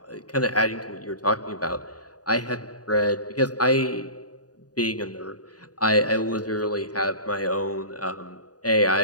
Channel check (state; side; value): late; right; 0.68 ms